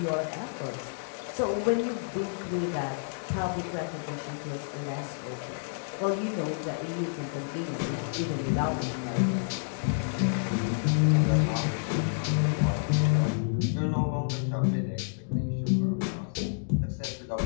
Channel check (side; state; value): right; silent; digital silence